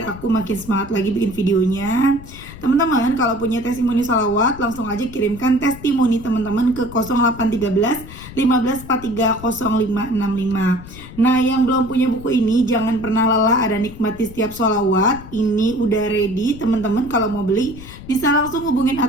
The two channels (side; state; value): left; noise; rumble, 15 dB below the sound